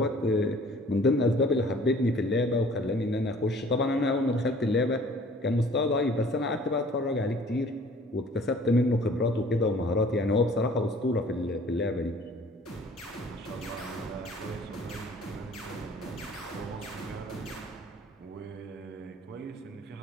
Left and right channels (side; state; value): both; normal; correlation 0.52